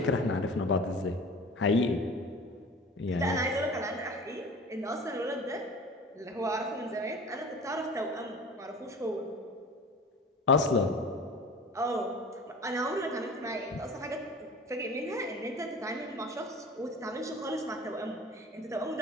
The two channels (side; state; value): both; normal; correlation 0.40